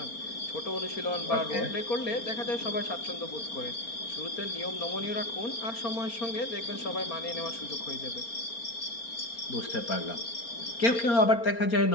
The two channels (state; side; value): late; right; 4.3 ms